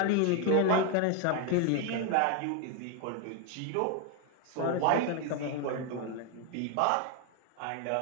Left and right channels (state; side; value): different; both; correlation 0.01